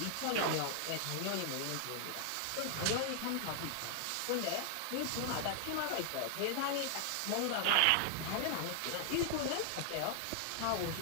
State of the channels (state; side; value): different; both; correlation 0.00